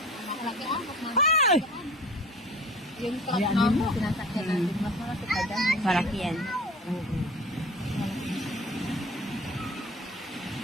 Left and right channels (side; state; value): both; normal; correlation 0.42